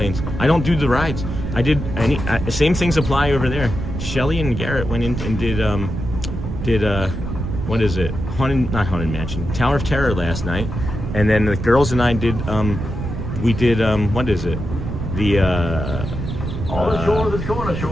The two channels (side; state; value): right; noise; rumble, 5 dB below the sound